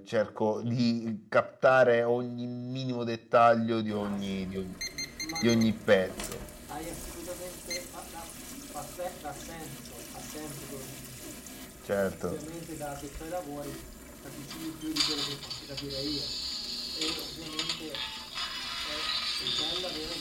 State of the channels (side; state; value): both; identical; correlation 1.00